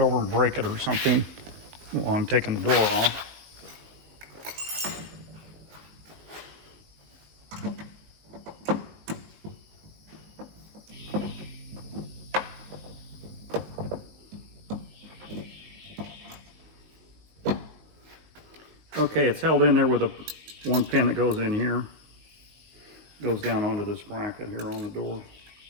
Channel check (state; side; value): late; left; 19 ms